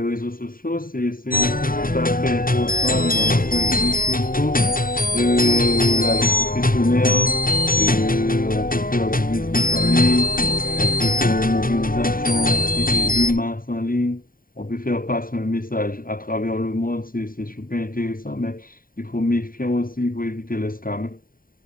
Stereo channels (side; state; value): right; late; 0.41 ms